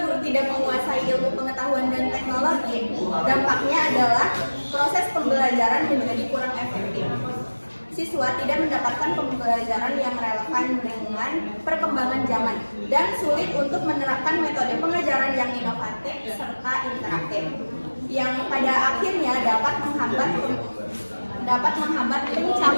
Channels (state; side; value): inverted; both; correlation -1.00